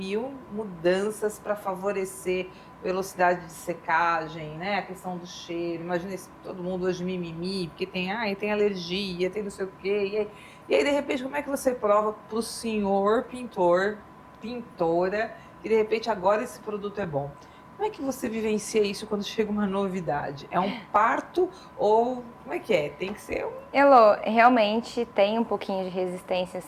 mudanças para favorecer velocidade de secagem, né? A questão do cheiro. Imagina todo mundo hoje mimimi, porque tem alergia, tem não sei o quê. E aí, de repente, como é que você prova para o senhor pintor, pintora, que de repente agora esse produto é bom? Como é que você vivencia isso quando chega uma novidade? É um parto ou como é que é? Tem que ser um... Elô, realmente tem um pouquinho de resistência,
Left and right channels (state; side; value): identical; both; correlation 1.00